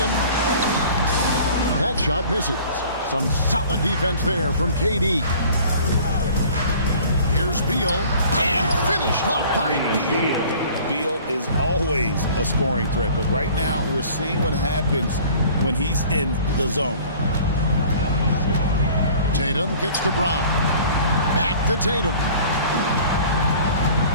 That shot misses. Some solid defense there from KD. Here's Beal, and finished off by Beal. Beal is always a scoring threat, but right now we're seeing what happens when he's in the zone. Tatum kicks to Brown. Back to Tatum.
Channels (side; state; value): both; inverted; correlation -0.48